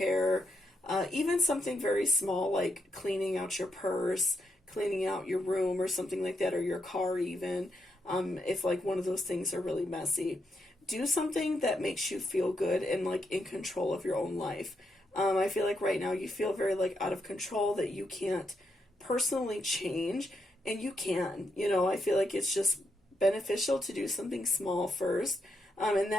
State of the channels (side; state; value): both; normal; correlation 0.80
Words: even something very small like cleaning out your purse, cleaning out your room or something like that, or your car even, if like one of those things are really messy. Do something that makes you feel good and like in control of your own life. I feel like right now you feel very like out of control, that you can't personally change, and you can. You know, I feel like it's just beneficial to do something small first, and